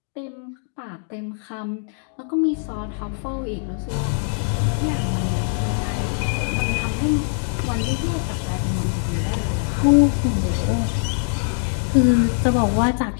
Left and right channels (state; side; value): silent; right; 64 dB below the other